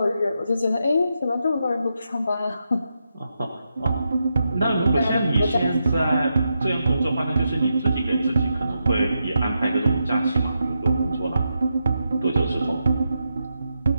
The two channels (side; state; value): both; inverted; correlation -0.85